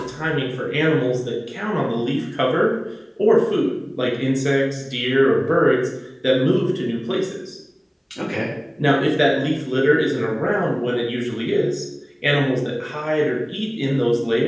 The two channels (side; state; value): both; identical; correlation 1.00